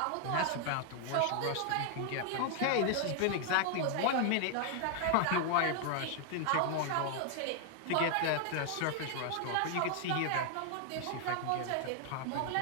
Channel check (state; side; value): different; both; correlation 0.00